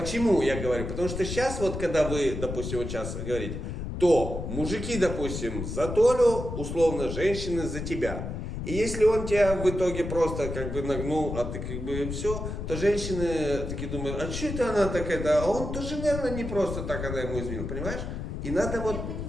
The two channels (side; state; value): left; noise; rumble, 5 dB below the sound